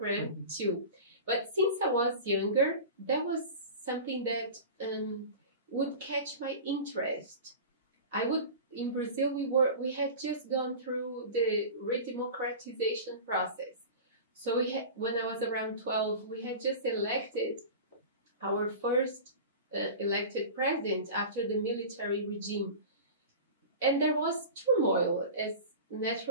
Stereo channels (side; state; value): both; inverted; correlation -0.33